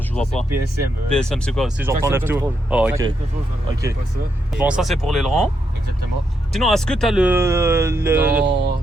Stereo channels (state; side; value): normal; both; correlation 0.81